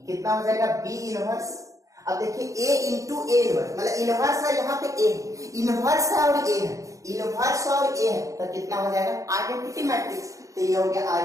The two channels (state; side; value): late; left; 0.16 ms